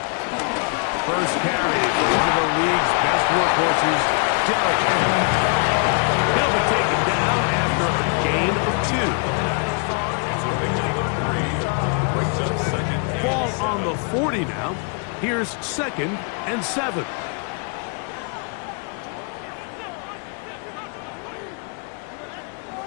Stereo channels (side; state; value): right; quieter; 38.9 dB